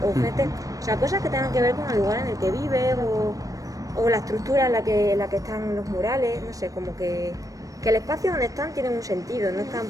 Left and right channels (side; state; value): left; late; 0.16 ms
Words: o gente, o sea, cosas que tengan que ver con el lugar en el que vives, o la estructura en la que están los murales, no sé, como que el espacio donde están tiene un sentido, no están